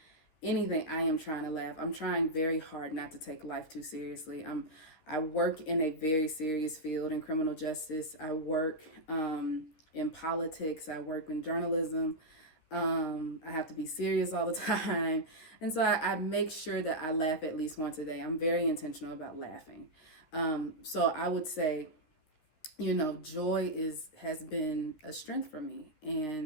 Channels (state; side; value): late; right; 13 ms